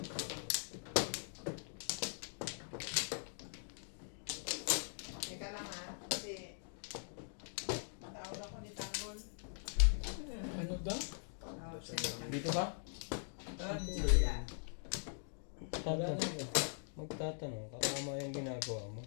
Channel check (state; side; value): silent; right; digital silence